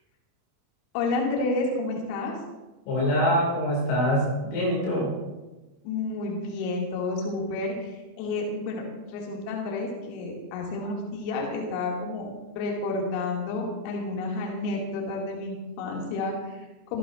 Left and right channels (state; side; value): late; right; 29 ms